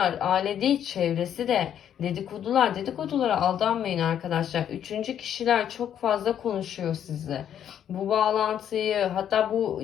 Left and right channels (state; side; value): quieter; right; 9.7 dB